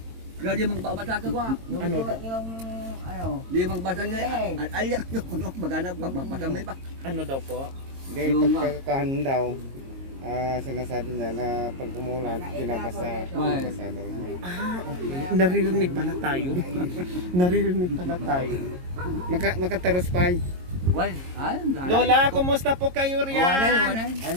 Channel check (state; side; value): late; left; 22 ms